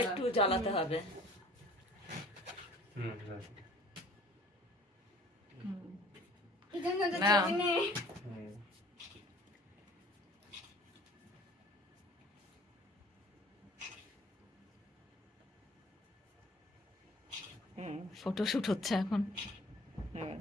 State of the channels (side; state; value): both; normal; correlation 0.50